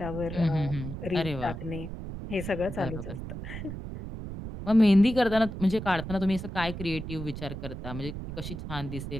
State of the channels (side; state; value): right; noise; rumble, 8 dB below the sound